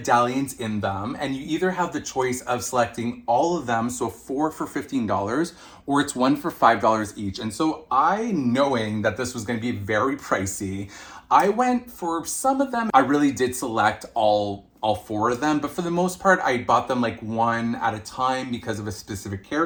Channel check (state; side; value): identical; both; correlation 1.00